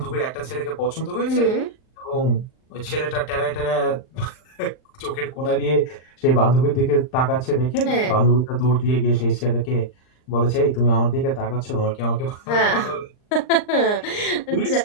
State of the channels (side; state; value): right; late; 39 ms